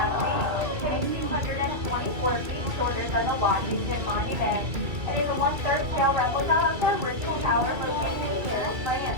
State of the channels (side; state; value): left; late; 2.3 ms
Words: It is 224 feet shorter than the Washington Monument. It is a 1/3 scale replica of the original tower located in Paris, France,